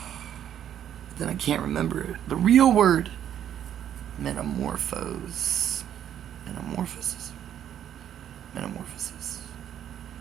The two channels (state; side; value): quieter; left; 10.2 dB